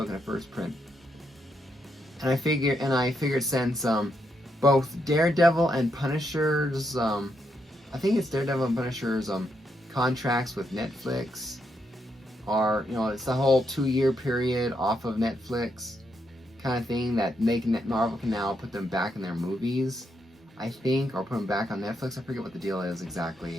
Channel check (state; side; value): normal; both; correlation 0.80